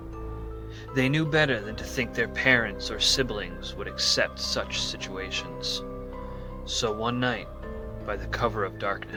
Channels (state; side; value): identical; both; correlation 1.00